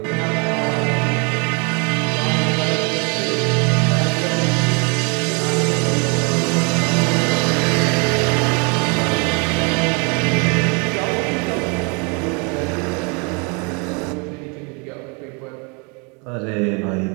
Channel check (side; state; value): left; quieter; 33.0 dB